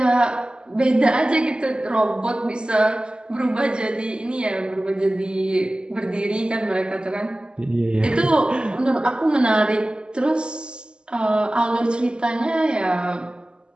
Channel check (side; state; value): left; late; 0.049 ms